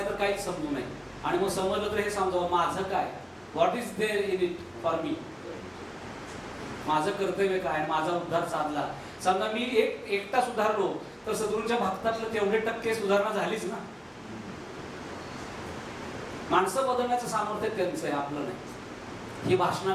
तर काहीच समजू नये. आणि मग समजलं तर हे समजावं माझं काय, what is there in it for me, माझं कर्तव्य काय, माझा उद्धार साधला. समजा मी एकटा सुधारलो तर सद्गुरूंच्या भक्तातलं तेवढे टक्के सुधारणा झालीच ना. माणसं बदलण्याचं सामर्थ्य त्यांचं आहे, आपलं नाही. ही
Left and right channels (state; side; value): identical; both; correlation 1.00